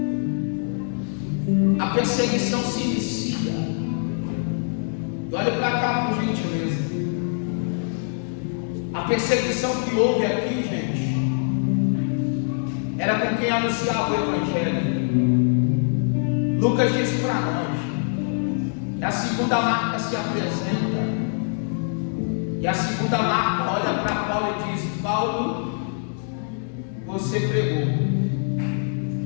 A perseguição se inicia. Olha para cá, por gentileza. A perseguição que houve aqui, gente, era com quem anunciava o Evangelho. Lucas diz para nós. A segunda marca se apresenta. E a segunda marca olha para Paulo e diz: Paulo, você pregou.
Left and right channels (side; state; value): right; silent; 63 dB below the other